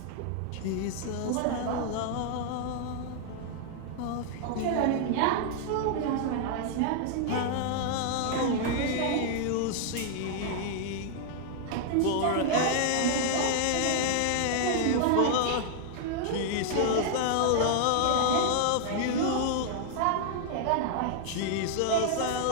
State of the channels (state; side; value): different; both; correlation 0.00